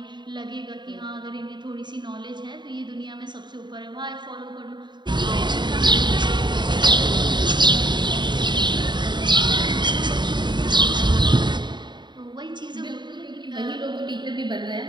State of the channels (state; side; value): late; left; 0.22 ms